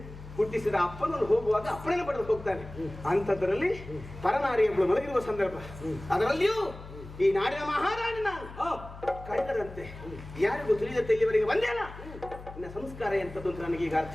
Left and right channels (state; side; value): noise; left; hum, 15 dB below the sound